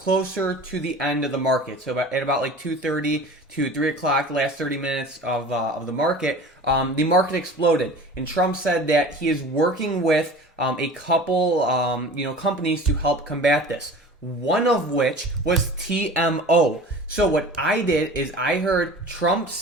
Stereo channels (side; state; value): both; normal; correlation 0.39